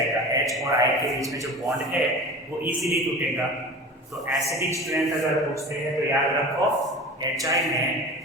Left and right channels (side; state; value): both; normal; correlation 0.35